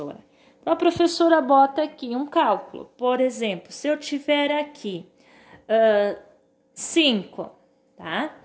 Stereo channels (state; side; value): identical; both; correlation 1.00